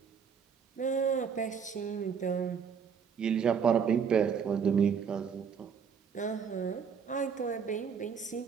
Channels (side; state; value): left; quieter; 6.7 dB